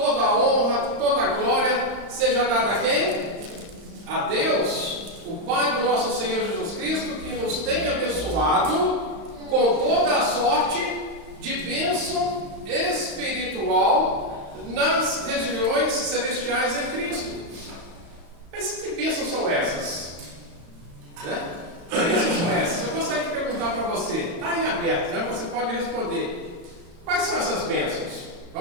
a honra, toda a glória seja dada a quem? A Deus, o Pai do nosso Senhor Jesus Cristo, que nos tem abençoado com toda a sorte de bênção espiritual nas regiões celestiais em Cristo. Mas que bênçãos são essas? Né? Que bênçãos são essas? Eu gostaria de perguntar para você, está aí aberto, né? Você pode responder. Quais são essas bênçãos?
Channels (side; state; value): left; late; 35 ms